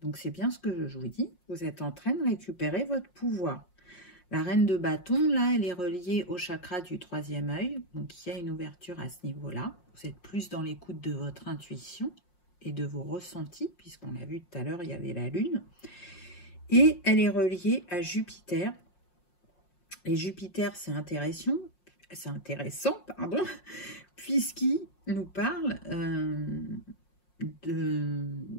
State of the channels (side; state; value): right; late; 5.6 ms